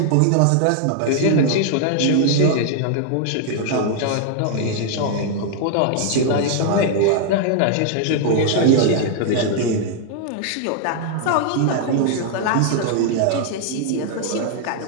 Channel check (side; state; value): both; different; correlation 0.00